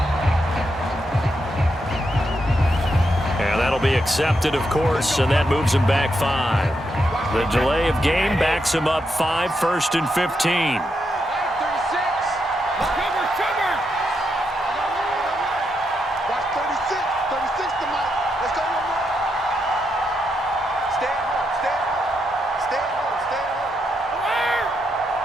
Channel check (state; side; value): normal; both; correlation 0.82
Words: And that'll be accepted, of course, and that moves him back 5. The delay of game backs him up 5, 1st and 15.